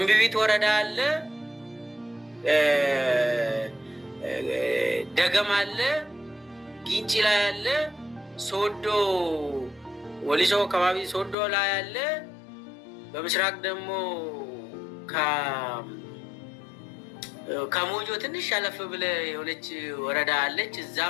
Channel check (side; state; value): right; drops out; at 11.4 s